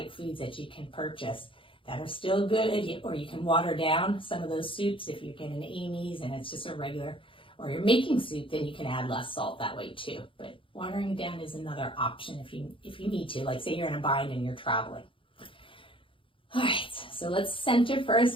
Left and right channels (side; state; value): right; late; 0.25 ms